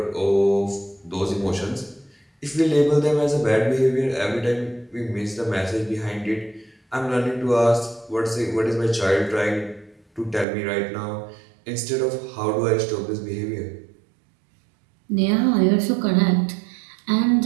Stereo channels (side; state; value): left; drops out; at 10.5 s